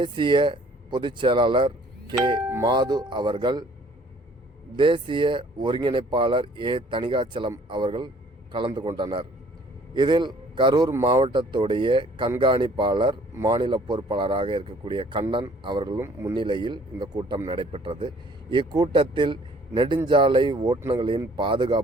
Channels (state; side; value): normal; both; correlation 0.57